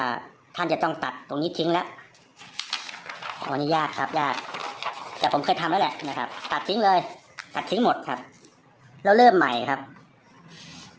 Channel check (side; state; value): both; identical; correlation 1.00